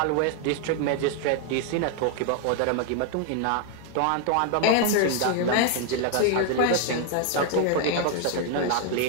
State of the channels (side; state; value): both; different; correlation 0.00